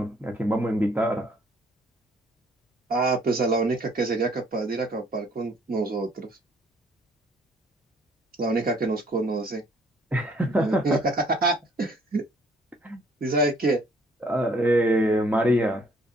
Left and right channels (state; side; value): normal; both; correlation 0.61